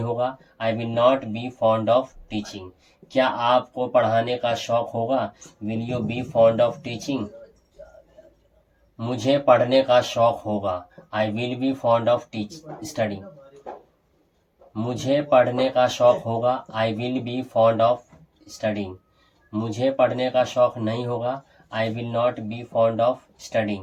होगा। I will not be fond of teaching. क्या आपको पढ़ाने का शौक होगा? Will you B fond of teaching? मुझे पढ़ने का शौक होगा। I will be fond of study. मुझे पढ़ने का शौक होगा। I will be fond of studying. मुझे पढ़ने का शौक नहीं होगा। I will not be fond of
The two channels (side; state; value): both; identical; correlation 1.00